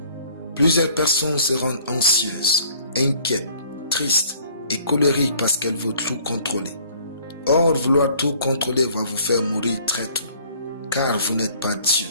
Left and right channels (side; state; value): both; inverted; correlation -0.56